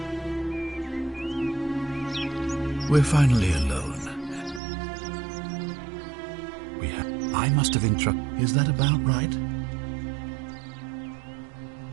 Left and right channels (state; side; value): drops out; left; at 4.6 s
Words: We're finally alone. I must have interrupted. Is that about right?